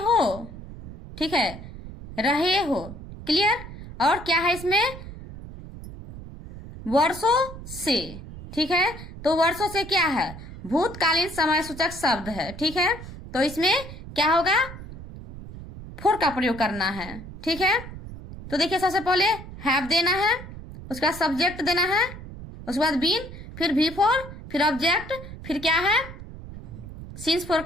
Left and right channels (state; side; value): noise; right; rumble, 13 dB below the sound